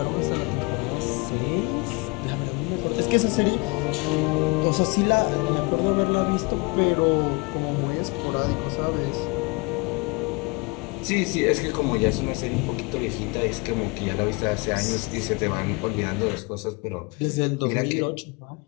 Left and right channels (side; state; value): right; quieter; 28.7 dB